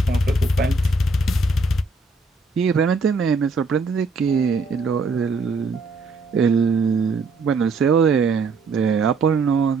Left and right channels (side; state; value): left; quieter; 3.7 dB